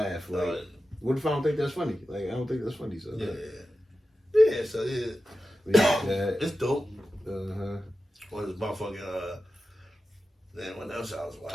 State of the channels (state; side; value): normal; both; correlation 0.92